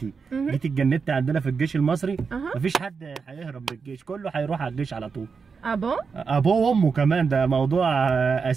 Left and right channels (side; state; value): left; quieter; 5.4 dB